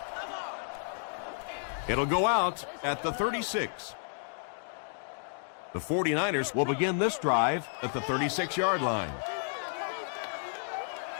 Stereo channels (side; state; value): right; silent; 56 dB below the other